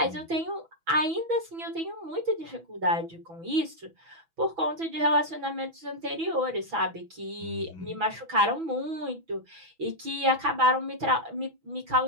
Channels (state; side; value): late; left; 6.1 ms